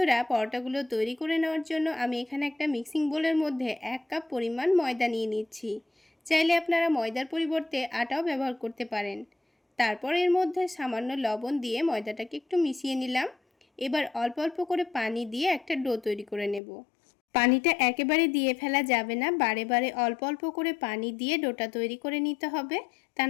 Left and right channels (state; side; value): drops out; right; at 16.6 s